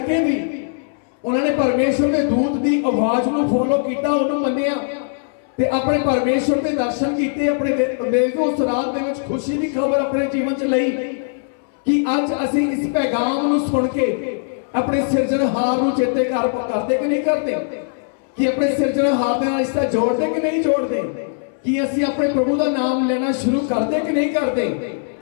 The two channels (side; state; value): right; silent; 66 dB below the other